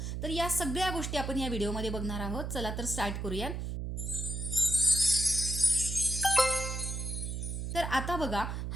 तर या सगळ्या गोष्टी आपण या व्हिडिओमध्ये बघणार आहोत. चला तर स्टार्ट करूया. तर आता बघा,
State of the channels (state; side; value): noise; right; hum, 4 dB below the sound